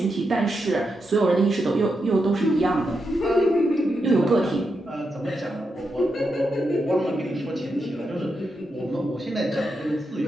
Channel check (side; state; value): both; normal; correlation 0.85